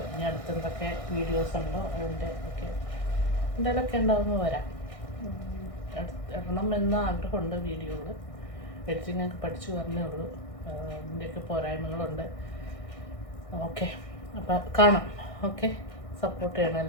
ഇനി അടുത്തെന്തൊക്കെ വീഡിയോസ് ഉണ്ടോ അതിൻ്റെ ഒക്കെ എന്തെങ്കിലുമൊക്കെ ഉണ്ടാവുമ്പോൾ വരാം. ഇടണം എന്ന ആഗ്രഹമുണ്ട് വീഡിയോകൾ. എഡിറ്റിങ്ങൊക്കെ പഠിച്ചു വരണേ ഉള്ളൂ. ഇതിൻ്റെയൊക്കെ പോരായ്മകളുണ്ട്. ഓക്കെ, അപ്പം കാണാം. ഓക്കെ, സപ്പോർട്ട് ചെയ്യണം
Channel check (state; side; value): late; right; 1.6 ms